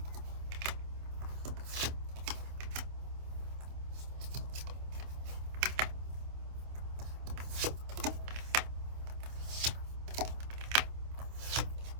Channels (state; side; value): late; left; 27 ms